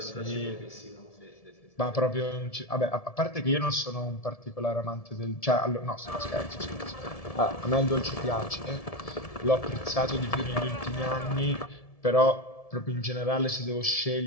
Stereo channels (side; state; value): right; late; 1.7 ms